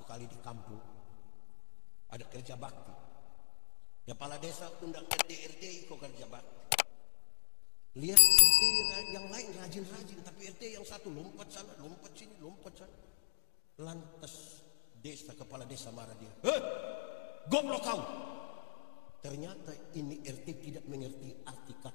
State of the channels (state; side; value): silent; right; digital silence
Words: kali di kampung ada kerja bakti. Kepala desa undang RT ikut kerja bakti. Lihat RT yang lain rajin-rajin, tapi RT yang satu lompat sana, lompat sini, lompat sana. Lantas kepala desa marah dia. Goblok kau! Ternyata ini RT tidak mengerti arti